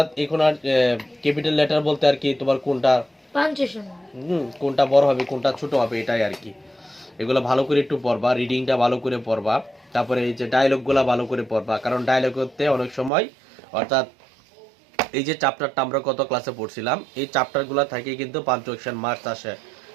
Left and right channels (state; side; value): drops out; left; at 13.1 s